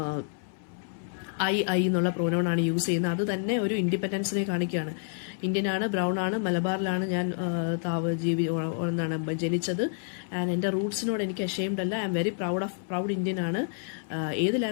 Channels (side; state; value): right; silent; 59 dB below the other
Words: ഐ എന്നുള്ള പ്രോനൗൺ ആണ് യൂസ് ചെയ്യുന്നത്. അത് തന്നെ ഒരു ഇൻഡിപെൻഡൻസിനെ കാണിക്കുകയാണ്. ഇന്ത്യനാണ്, ബ്രൗൺ ആണ്, മലബാറിലാണ് ഞാൻ ജനിച്ചത്. ആൻഡ് എൻ്റെ റൂട്ട്സിനോട് എനിക്ക് അഷെയിംഡ് അല്ല. I am very proud Indian ആണ്. ഏത്